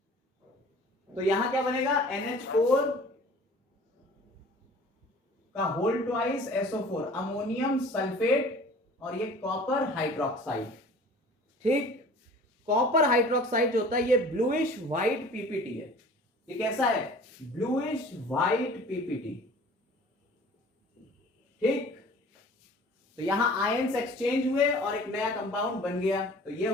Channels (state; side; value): normal; both; correlation 0.46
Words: तो यहां क्या बनेगा, NH4 का whole twice SO4, ammonium sulphate, और ये कॉपर हाइड्रोक्साइड। ठीक, कॉपर हाइड्रोक्साइड जो होता है ये ब्लूइश व्हाइट पीपीटी है। ये कैसा है, ब्लूइश व्हाइट पीपीटी। ठीक, तो यहां आयंस एक्सचेंज हुए और एक नया कंपाउंड बन गया, तो ये